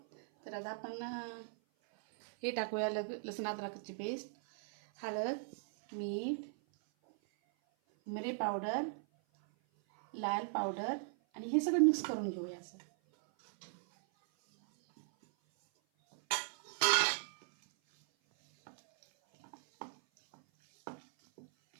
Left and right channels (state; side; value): silent; left; 53 dB below the other